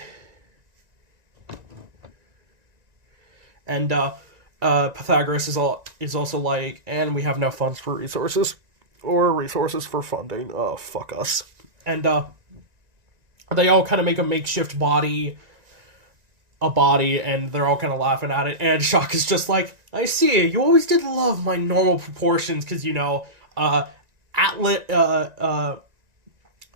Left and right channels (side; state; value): left; late; 1.9 ms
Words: And Pythagoras is also like, and we have no funds for resources or resources for funding. Oh, fuck us. And they all kind of make a makeshift body, and they're all kind of laughing at it. And Shock is just like, I see, you always did love my normal proportions, because, you know,